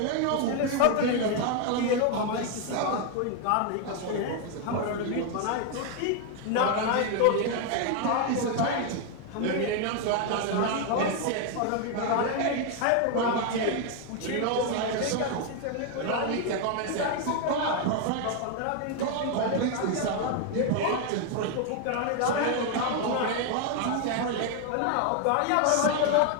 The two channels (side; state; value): both; different; correlation 0.01